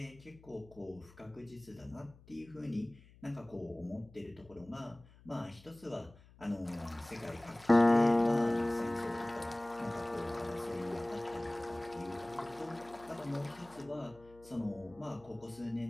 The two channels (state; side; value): noise; left; hum, 23 dB below the sound